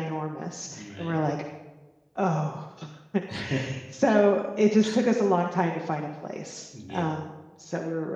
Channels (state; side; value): identical; both; correlation 1.00